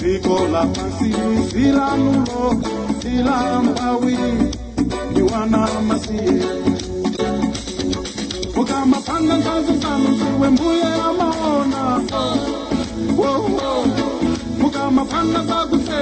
la pansi Sila nulo Sila mpawi Niwana masie Mukama panga nkazu sanu Siwe mbuye amaona Mukama panga zaku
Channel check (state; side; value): identical; both; correlation 1.00